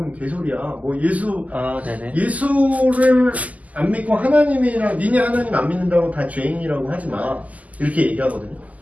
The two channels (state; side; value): late; left; 0.075 ms